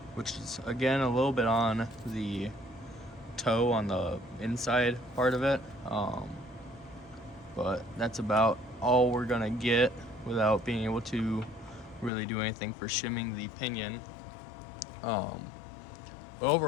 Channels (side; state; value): right; drops out; at 12.1 s